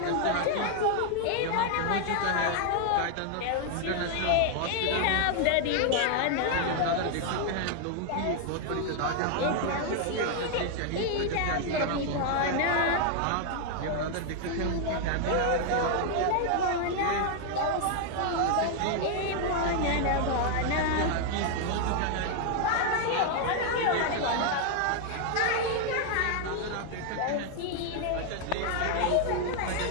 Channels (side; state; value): both; different; correlation 0.00